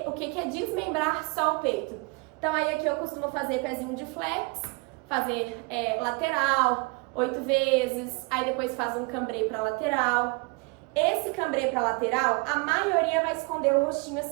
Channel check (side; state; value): left; quieter; 28.7 dB